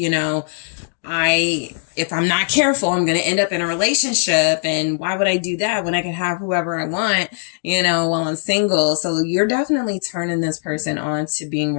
know, if I'm not careful, I'm going to end up in a relationship. And why would I do that when I can have whoever I want, you know, while I'm single? So you're definitely turning this person on to being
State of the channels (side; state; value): right; silent; digital silence